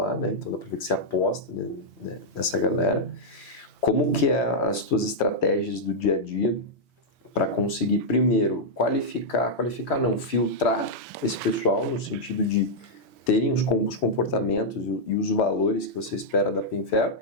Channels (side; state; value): both; normal; correlation -0.05